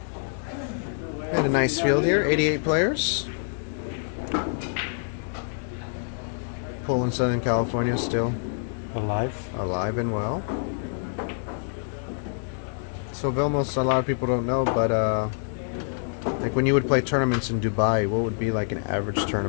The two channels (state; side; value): silent; right; digital silence